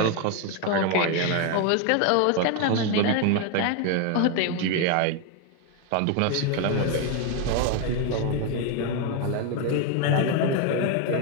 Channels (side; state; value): both; different; correlation 0.02